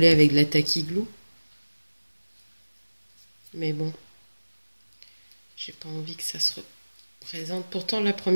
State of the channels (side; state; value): both; inverted; correlation -1.00